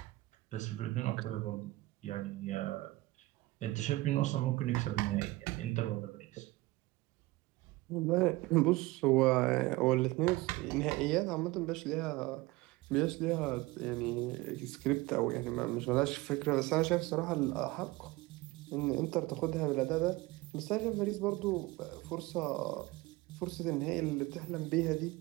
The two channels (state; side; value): quieter; left; 20.3 dB